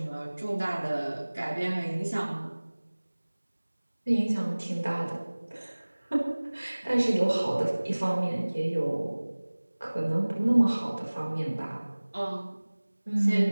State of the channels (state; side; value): inverted; both; correlation -1.00